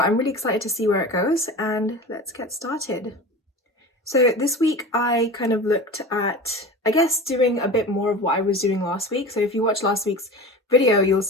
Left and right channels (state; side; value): normal; both; correlation 0.33